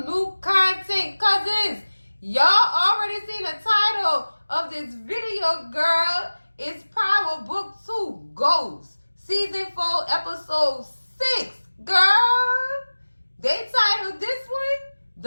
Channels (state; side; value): inverted; both; correlation -1.00